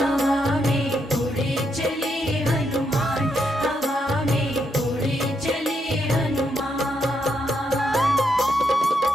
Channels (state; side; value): normal; both; correlation 0.79